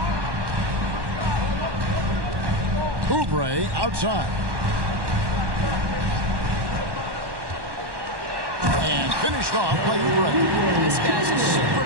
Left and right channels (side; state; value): left; late; 1.1 ms